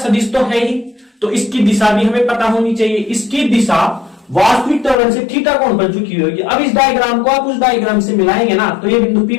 तो है ही, तो इसकी दिशा भी हमें पता होनी चाहिए, इसकी दिशा वास्तविक त्वरण से थीटा कोण पर झुकी हुई होगी। अब इस डायग्राम को आप उस डायग्राम से मिलाएंगे ना, तो ये बिंदु P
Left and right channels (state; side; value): drops out; right; at 5.0 s